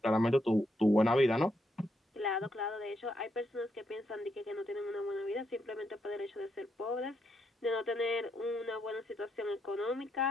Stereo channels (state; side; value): normal; both; correlation 0.79